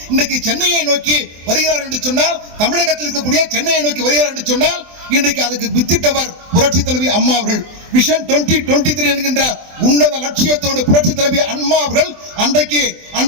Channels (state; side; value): late; left; 24 ms